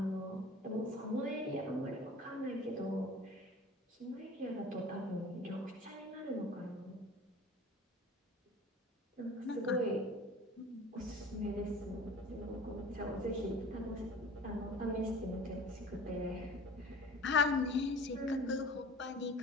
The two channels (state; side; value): normal; both; correlation 0.42